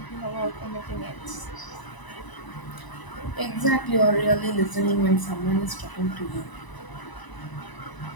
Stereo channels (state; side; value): late; right; 1.0 ms